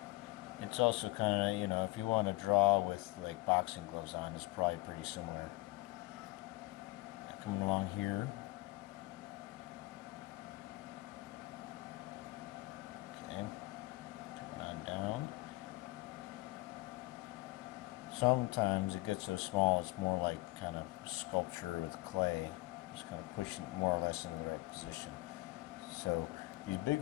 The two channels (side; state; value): right; quieter; 21.8 dB